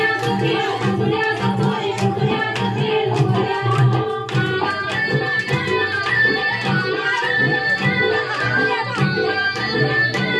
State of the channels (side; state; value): both; identical; correlation 1.00